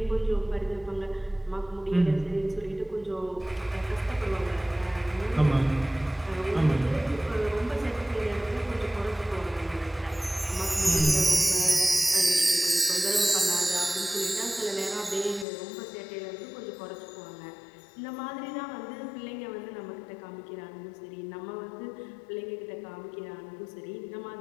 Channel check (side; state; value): right; drops out; at 15.5 s